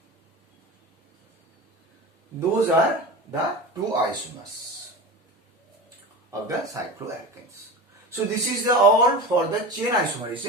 Those are the two isomers of the cycloalkanes. So this is all for the chain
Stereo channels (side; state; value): both; normal; correlation 0.29